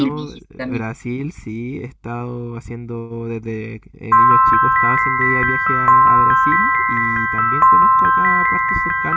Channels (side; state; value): both; identical; correlation 1.00